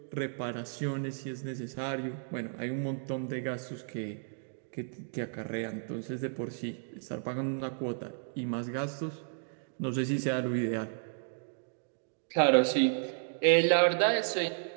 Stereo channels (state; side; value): silent; left; digital silence